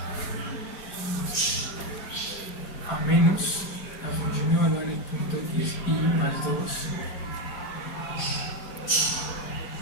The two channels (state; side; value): late; right; 5.0 ms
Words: a menos la función evaluada en el punto x y más 2